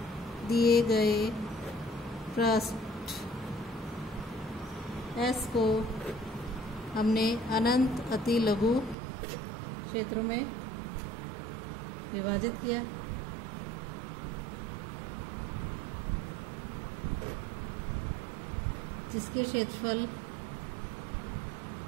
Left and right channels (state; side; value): drops out; left; at 9.0 s